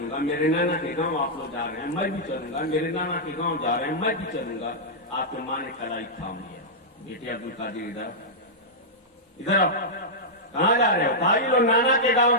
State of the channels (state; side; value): normal; both; correlation -0.09